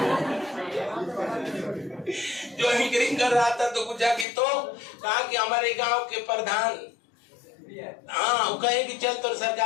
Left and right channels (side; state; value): right; drops out; at 4.2 s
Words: जो एंकरिंग कर रहा था तो पूछा कि तो कहा कि हमारे गांव के प्रधान, हाँ, वो कहे कि चल तो